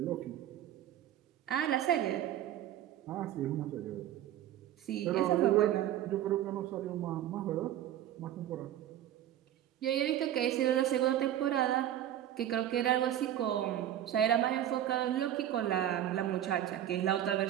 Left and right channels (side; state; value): left; quieter; 11.8 dB